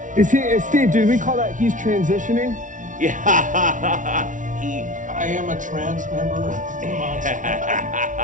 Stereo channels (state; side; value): late; left; 0.37 ms